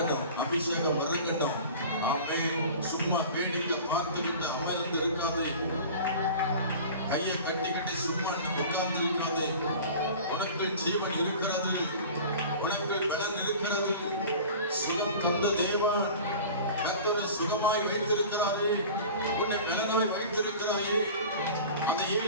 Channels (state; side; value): inverted; both; correlation -0.39